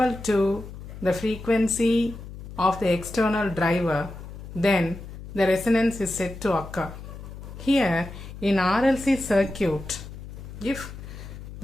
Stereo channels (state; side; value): noise; left; hum, 12 dB below the sound